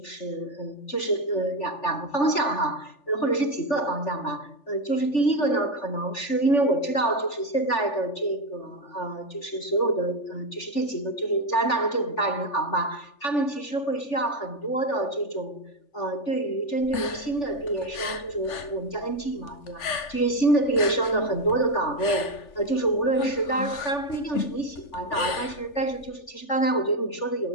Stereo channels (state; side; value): late; right; 3.4 ms